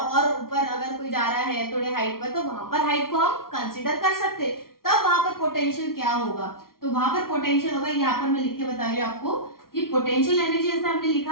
ऊपर अगर कोई जा रहा है थोड़े हाइट पर, तो वहां पर हाइट को हम कंसीडर कर सकते, तब वहां पर पोटेंशियल क्या होगा, तो वहां पर पोटेंशियल होगा, यहाँ पर मैं लिख के बता रही हूँ आपको कि पोटेंशियल एनर्जी जैसे हमने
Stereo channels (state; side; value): late; right; 0.93 ms